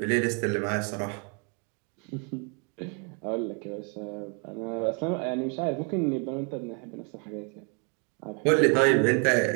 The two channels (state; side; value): quieter; left; 36.6 dB